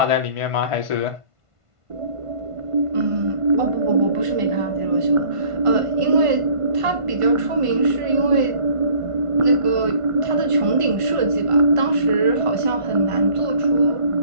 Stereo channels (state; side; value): late; left; 1.5 ms